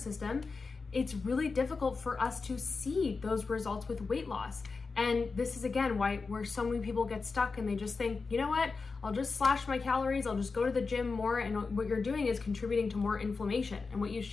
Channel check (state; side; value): quieter; right; 4.4 dB